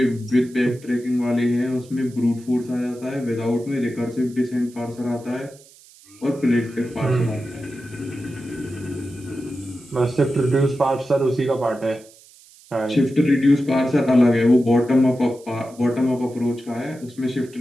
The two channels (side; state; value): right; noise; hiss, 25 dB below the sound